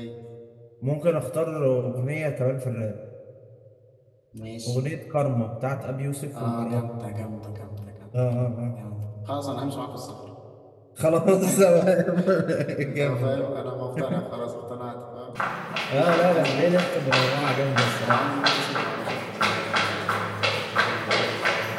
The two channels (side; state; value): both; identical; correlation 1.00